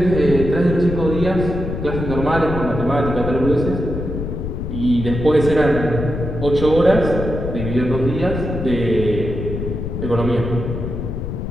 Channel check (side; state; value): left; noise; rumble, 5 dB below the sound